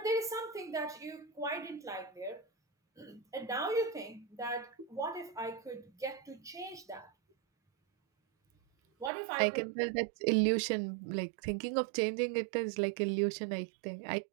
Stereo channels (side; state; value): left; drops out; at 9.1 s